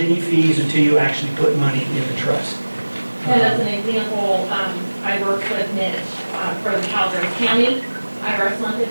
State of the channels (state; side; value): inverted; both; correlation -1.00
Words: fees until you actually put money in the trust. And as an example, I worked with Mitch for the Calaveras County IRS